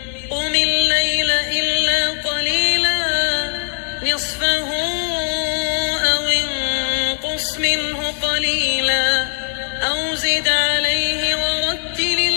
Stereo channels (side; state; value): right; silent; digital silence